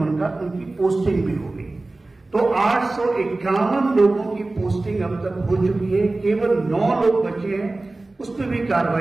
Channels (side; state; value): left; quieter; 3.1 dB